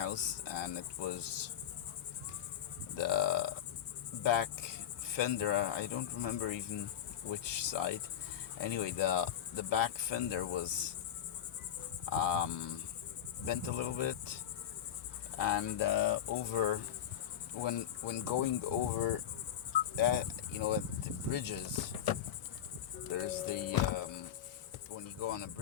and it was the back fender. I don't remember even which side. Anyway, the back fender was bent a little bit, and over when going over, at the bridges, there's the when you go on a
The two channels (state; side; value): quieter; right; 10.0 dB